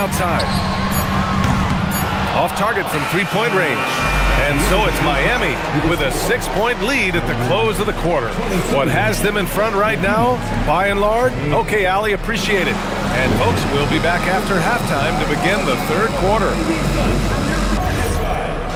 Off target from three-point range. And so it's Miami with a 6-point lead at the close of the quarter. What has them in front right now, by and large? Okay, Ali, appreciate it. And folks, we'll be back after halftime to begin the third quarter.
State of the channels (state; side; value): identical; both; correlation 1.00